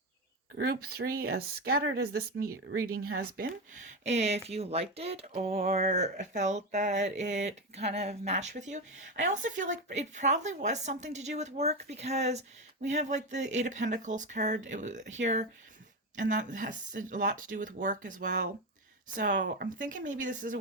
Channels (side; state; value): both; normal; correlation 0.15